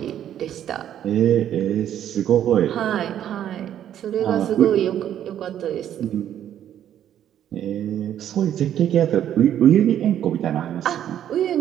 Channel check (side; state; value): left; quieter; 10.6 dB